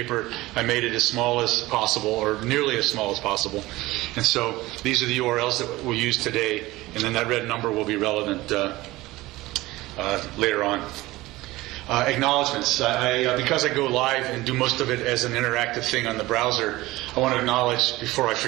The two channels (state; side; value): quieter; left; 18.9 dB